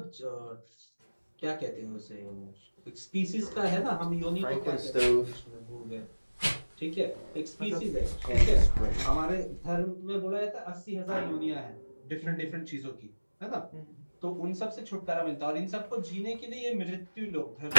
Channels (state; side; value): inverted; both; correlation -1.00